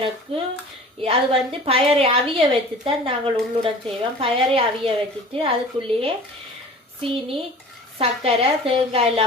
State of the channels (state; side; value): normal; both; correlation 0.42